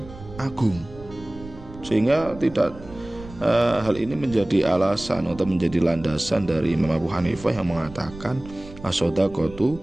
agung. Sehingga tidak hal ini menjadi alasan atau menjadi landasan dari Imam Abu Hanifah yang mengatakan as-shadaqatu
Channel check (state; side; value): noise; right; rumble, 17 dB below the sound